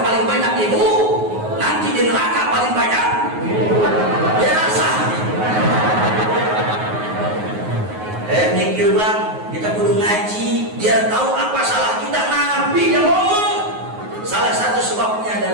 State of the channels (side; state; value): left; late; 9.5 ms